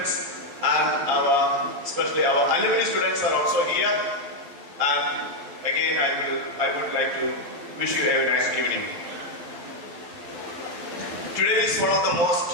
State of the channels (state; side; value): late; left; 11 ms